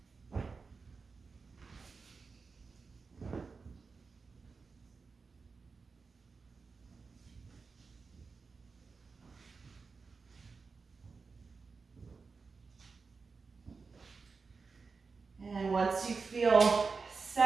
And once you feel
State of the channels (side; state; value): left; quieter; 4.6 dB